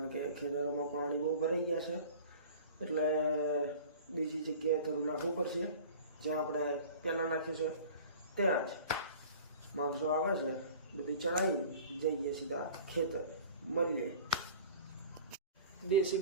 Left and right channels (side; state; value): both; inverted; correlation -0.43